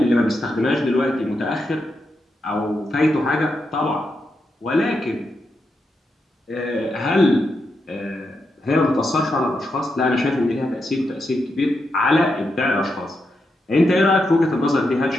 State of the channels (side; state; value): both; normal; correlation 0.85